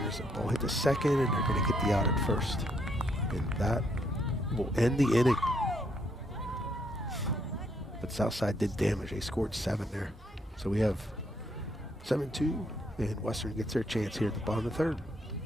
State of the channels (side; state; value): both; normal; correlation 0.72